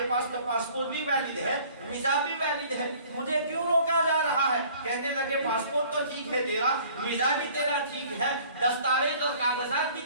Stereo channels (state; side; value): inverted; both; correlation -0.52